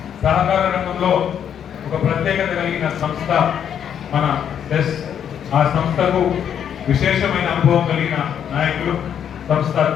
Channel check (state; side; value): quieter; right; 8.8 dB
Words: సహకార రంగంలో ఒక ప్రత్యేకత కలిగిన సంస్థ మన సెస్. ఆ సంస్థకు విశేషమైన అనుభవం కలిగిన నాయకులు, సంస్థ